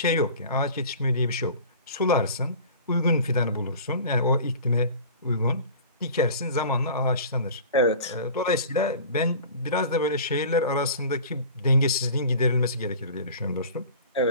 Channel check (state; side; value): inverted; both; correlation -0.41